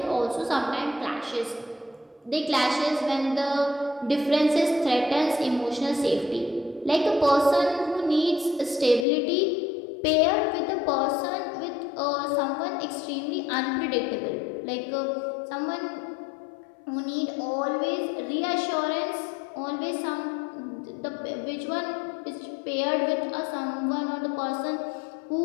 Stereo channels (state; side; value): drops out; right; at 9.1 s